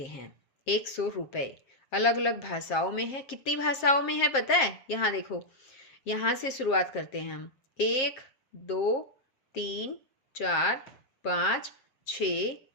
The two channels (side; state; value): right; late; 7.5 ms